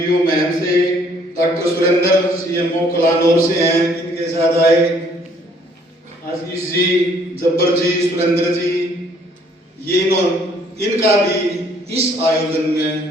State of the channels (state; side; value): normal; both; correlation 0.62